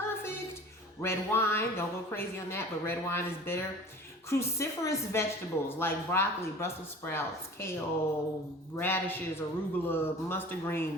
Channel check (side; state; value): both; normal; correlation 0.42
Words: Red wine, don't go crazy on that, but red wine is bitter. Cruciferous vegetables like broccoli, Brussels sprouts, kale, radishes, arugula, mustard